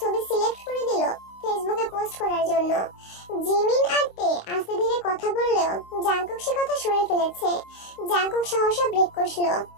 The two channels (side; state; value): right; late; 26 ms